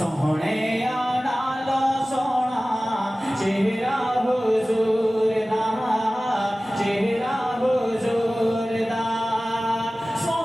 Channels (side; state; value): both; normal; correlation 0.97